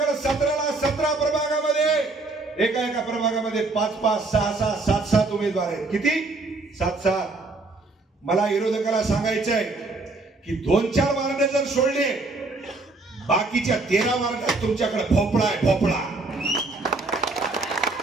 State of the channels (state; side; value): quieter; left; 3.4 dB